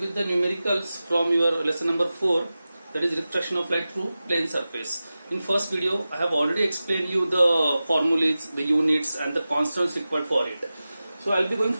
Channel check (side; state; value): both; inverted; correlation -0.95